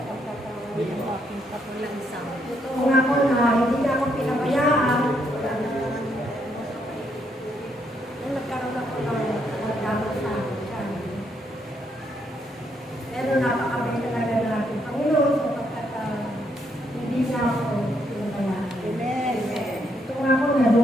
ng aking kapalansang. Kung ako na hindi na ako pinabayaan, nung nagkaroon ako ng magdamot sa akin. Pero napakabay talaga ng ating Panginoon sapagkat hindi na ako pinabayaan. Amen. Ito nga ako na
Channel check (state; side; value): normal; both; correlation 0.75